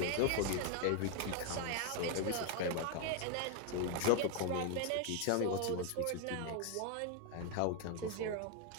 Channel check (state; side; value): different; both; correlation 0.01